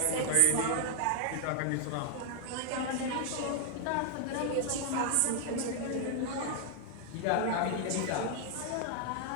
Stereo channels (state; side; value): different; both; correlation 0.00